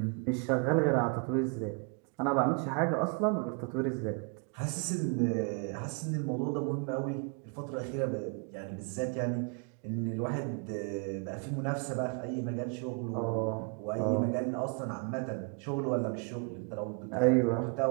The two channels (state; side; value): quieter; left; 35.7 dB